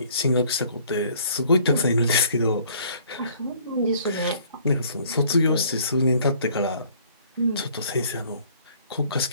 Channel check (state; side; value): inverted; both; correlation -0.57